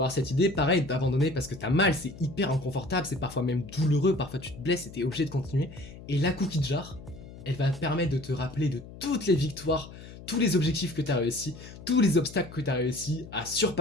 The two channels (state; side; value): noise; left; hum, 16 dB below the sound